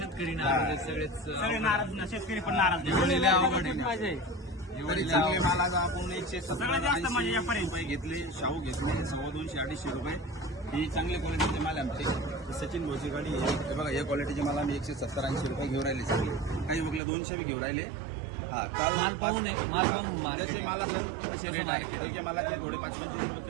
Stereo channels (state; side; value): drops out; left; at 17.0 s